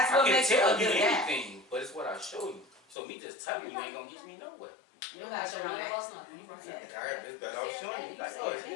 what I can makes you tell a good guy? anything, but it's what I show you. So me just telling you ain't gonna get me nowhere. You don't gotta show none of us nothing. You right. I got this better off showing you. Like, oh, is he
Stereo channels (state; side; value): drops out; right; at 3.0 s